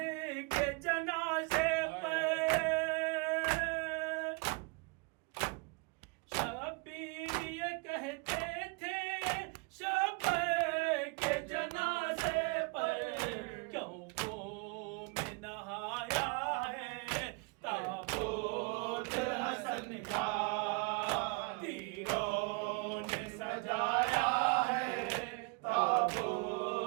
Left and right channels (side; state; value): left; quieter; 30.3 dB